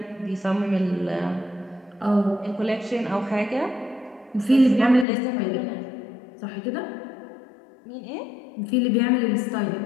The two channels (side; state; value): right; drops out; at 5.1 s